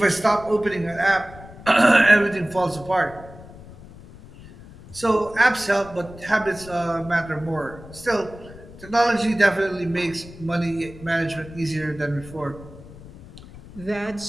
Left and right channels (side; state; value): left; noise; rumble, 18 dB below the sound